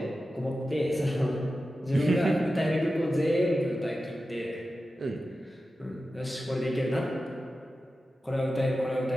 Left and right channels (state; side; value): normal; both; correlation 0.93